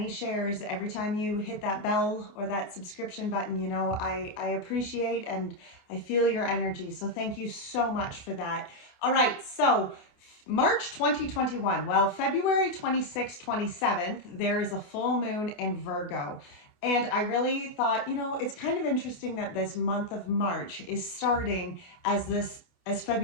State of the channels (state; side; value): late; right; 28 ms